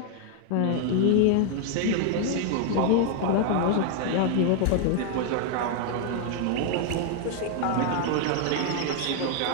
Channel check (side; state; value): both; different; correlation 0.00